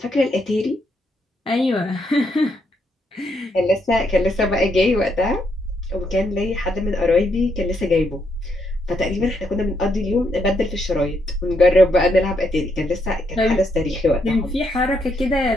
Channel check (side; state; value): both; normal; correlation 0.77